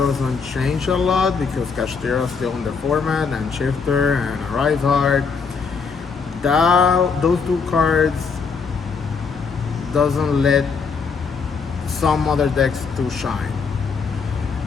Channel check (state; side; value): quieter; right; 5.3 dB